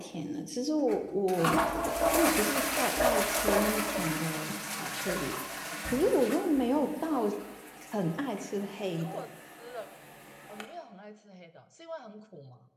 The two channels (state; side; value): identical; both; correlation 1.00